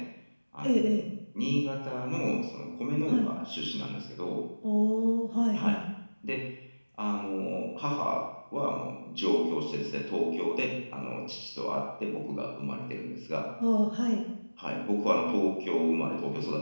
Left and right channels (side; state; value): both; inverted; correlation -1.00